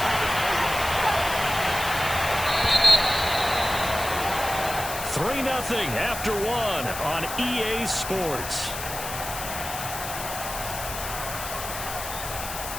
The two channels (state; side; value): noise; left; hiss, 8 dB below the sound